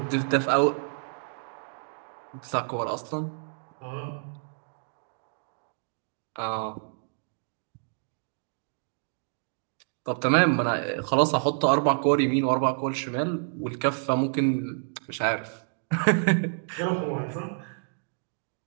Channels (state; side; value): silent; left; digital silence